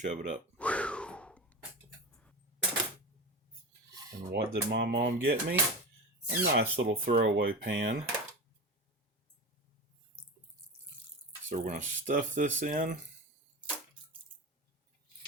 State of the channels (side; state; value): both; normal; correlation 0.26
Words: it up. And what did my mom get me? A nice little throwaway pan. So we're going to stuff this in.